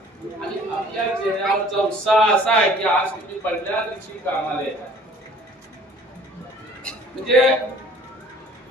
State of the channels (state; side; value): normal; both; correlation 0.52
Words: आणि आपल्या चेहऱ्यावरचा उत्साह असा आहे की आज तुम्ही पहिल्या दिवशी कामाला येता. म्हणजे